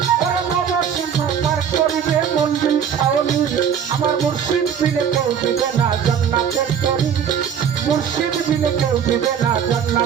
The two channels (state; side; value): quieter; left; 8.1 dB